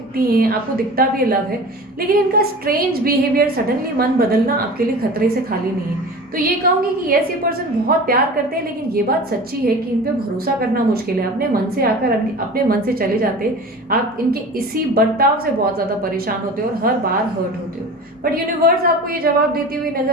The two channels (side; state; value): both; normal; correlation 0.36